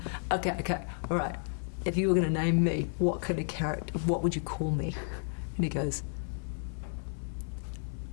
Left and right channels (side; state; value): right; silent; 56 dB below the other